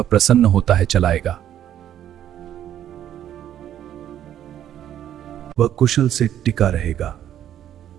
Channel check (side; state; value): left; quieter; 11.0 dB